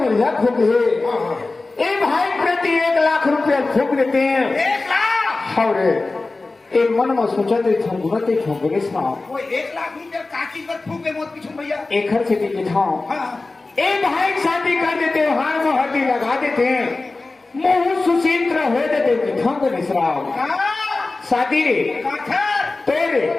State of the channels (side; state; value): right; quieter; 3.4 dB